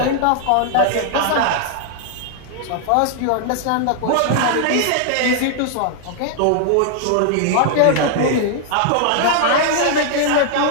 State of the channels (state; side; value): different; both; correlation 0.00